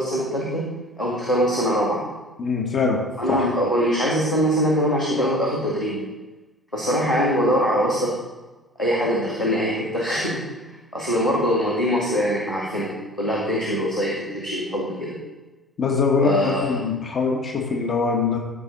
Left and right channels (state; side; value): normal; both; correlation 0.42